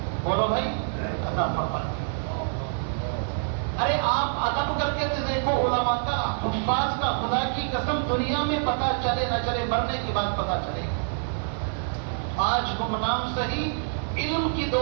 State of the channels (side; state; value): left; silent; 61 dB below the other